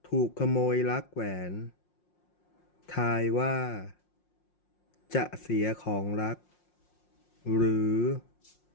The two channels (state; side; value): late; right; 5.6 ms